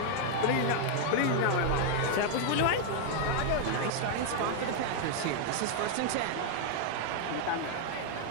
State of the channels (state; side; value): different; both; correlation 0.00